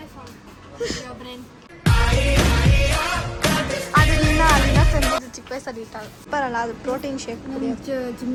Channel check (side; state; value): both; identical; correlation 1.00